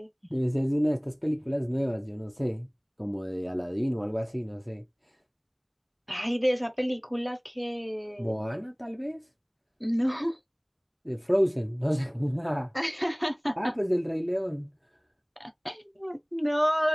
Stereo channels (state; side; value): identical; both; correlation 1.00